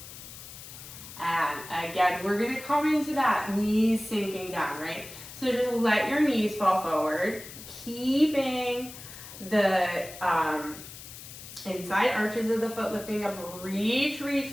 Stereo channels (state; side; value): noise; left; hiss, 14 dB below the sound